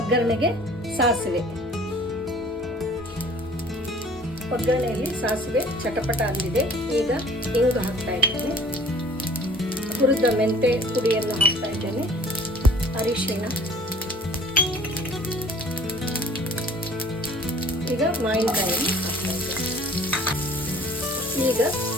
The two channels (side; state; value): both; normal; correlation 0.50